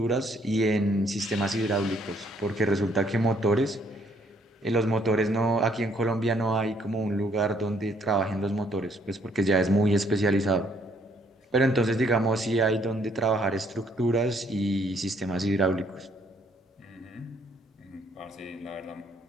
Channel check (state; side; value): normal; both; correlation 0.67